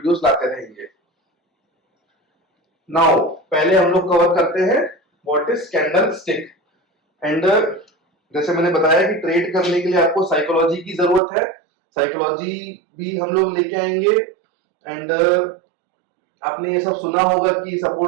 लाते रहेंगे। नाउ पहले हम लोग कवर करते हैं what is candle stick. And जैसे मैंने बताया कि ट्रेड करने के लिए आपको साइकोलॉजी की जरूरत है, साइकोलॉजी भी हम लोग लेके आएंगे। एंड आपने ये सब सुना होगा कि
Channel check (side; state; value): left; drops out; at 11.2 s